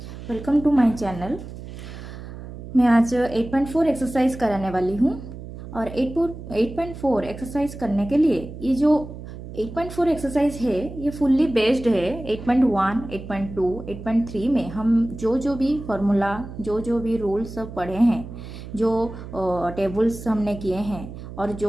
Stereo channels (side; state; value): right; noise; hum, 12 dB below the sound